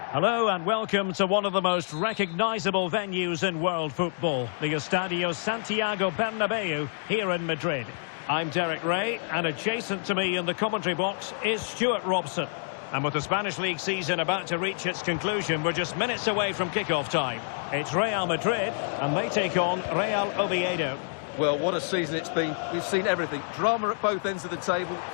Hello and welcome to one of the most recognisable venues in world football, the Estadio Santiago Bernabeu here in Madrid. I'm Derek Ray, and adjacent to me in the commentary box is Stuart Robson. And with the Spanish League season about to reach its conclusion, we're just minutes away from kickoff time. It's Real Madrid, and they take on Real Oviedo. Well, what a season it's been. We've seen everything. Drama at both ends of the table,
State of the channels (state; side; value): silent; right; digital silence